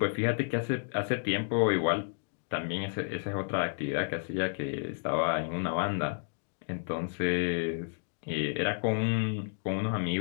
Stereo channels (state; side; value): silent; right; digital silence